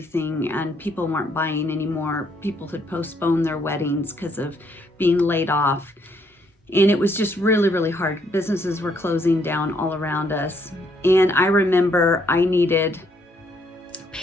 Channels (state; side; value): normal; both; correlation 0.70